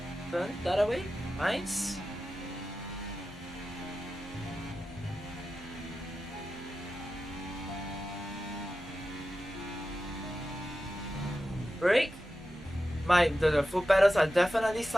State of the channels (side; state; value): both; normal; correlation 0.93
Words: Turn that away. Nice. Brake. The foot pedals are definitely